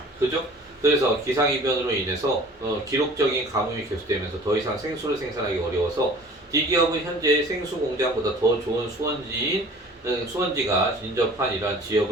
그죠? 그래서 기상이변으로 인해서 기록적인 가뭄이 계속되면서 더 이상 생수를 생산하기 어려워서 D기업은 현재 생수 공장보다 더 좋은 수원지가 인접한 이러한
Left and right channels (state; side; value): normal; both; correlation 0.46